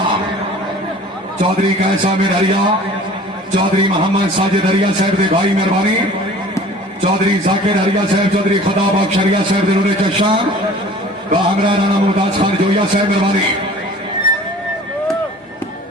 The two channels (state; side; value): normal; both; correlation 0.46